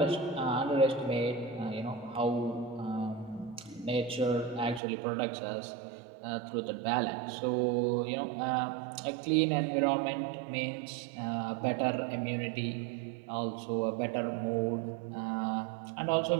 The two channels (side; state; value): left; drops out; at 4.8 s